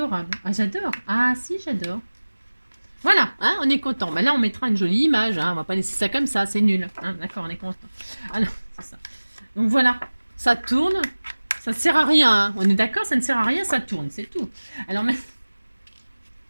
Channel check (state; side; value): inverted; both; correlation -1.00